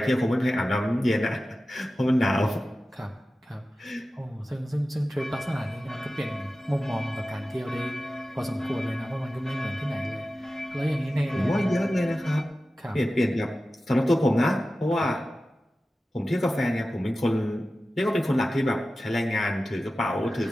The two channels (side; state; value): both; normal; correlation 0.95